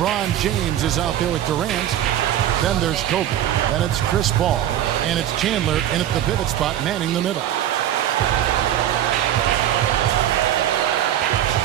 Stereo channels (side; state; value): left; quieter; 11.5 dB